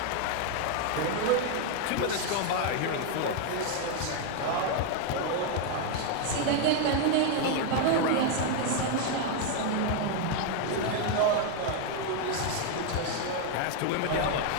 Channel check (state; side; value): different; both; correlation 0.00